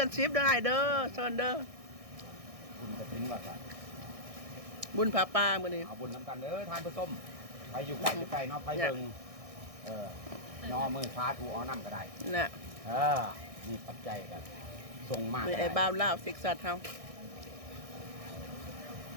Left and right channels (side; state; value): left; late; 1.6 ms